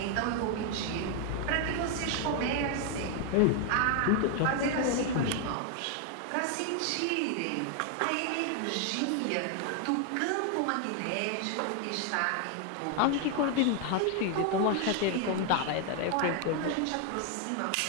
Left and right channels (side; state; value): both; different; correlation 0.00